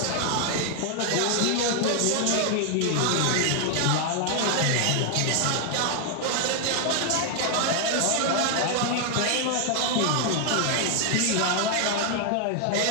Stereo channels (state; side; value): different; both; correlation 0.00